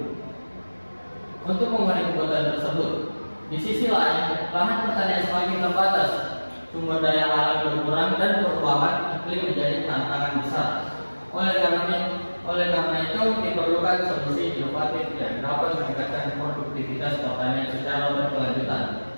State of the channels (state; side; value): inverted; both; correlation -1.00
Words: Untuk memenuhi kebutuhan tersebut, di sisi lain, lahan pertanian semakin terbatas, sumber daya alam berkurang dan perubahan iklim menjadi tantangan besar. Oleh karena itu, diperlukan solusi inovatif yang dapat meningkatkan produktivitas pertanian secara berkelanjutan.